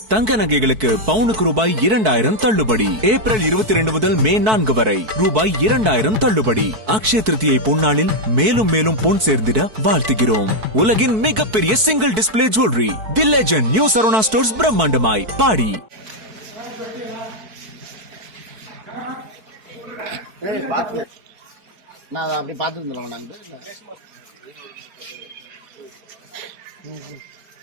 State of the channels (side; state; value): left; late; 4.6 ms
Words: தங்க நகைகளுக்கு பவுனுக்கு ரூபாய் 2000 தள்ளுபடி. ஏப்ரல் 22 முதல் மே 4 வரை ரூபாய் 2000 தள்ளுபடி. அக்ஷய திருதியை பொன்னாளில் மேலும் மேலும் பொன் சேர்ந்திட வாழ்த்துகிறோம். உலகின் மிகப்பெரிய single display jewellery the legend new Saravana stores பிரம்மாண்டமாய் பாடி. நான் அப்படி பார்த்துருந்தோம் நாங்கள்